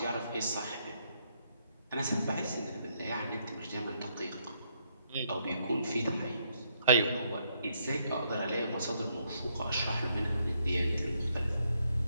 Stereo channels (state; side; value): inverted; both; correlation -0.74